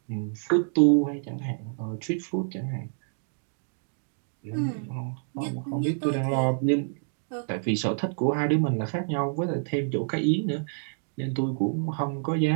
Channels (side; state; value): left; silent; digital silence